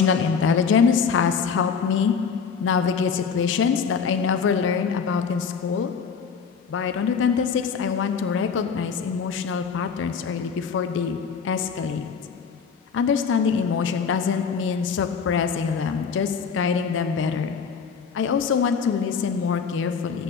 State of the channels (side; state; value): right; quieter; 6.1 dB